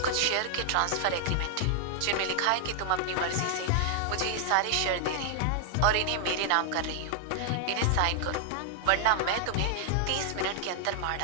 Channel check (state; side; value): different; both; correlation 0.00